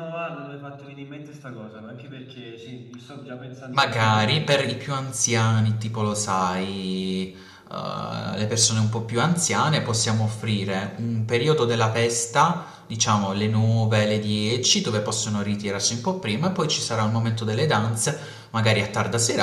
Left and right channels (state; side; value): identical; both; correlation 1.00